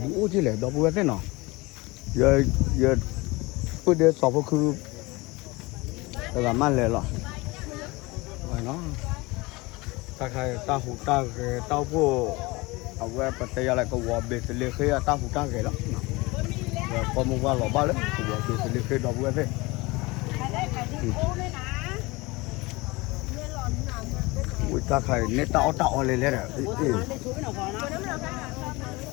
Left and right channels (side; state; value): right; quieter; 23.3 dB